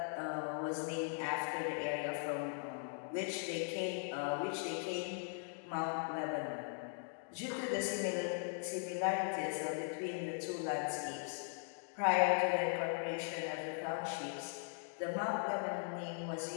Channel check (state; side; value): silent; right; 51 dB below the other